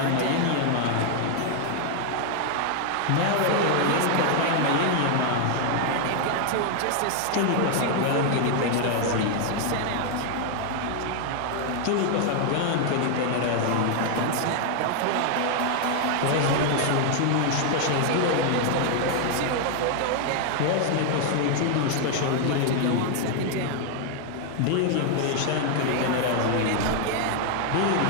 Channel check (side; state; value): both; different; correlation 0.00